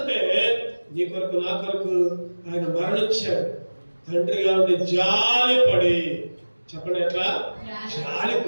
నీ కొరకు నా కొరకు ఆయన మరణించాడు. తండ్రిగా ఉండి జాలిపడి, చెప్పండి ఎట్లా?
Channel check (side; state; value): both; inverted; correlation -1.00